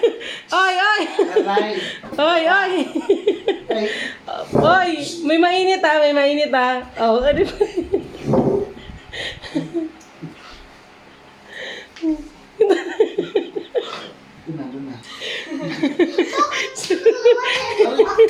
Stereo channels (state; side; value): identical; both; correlation 1.00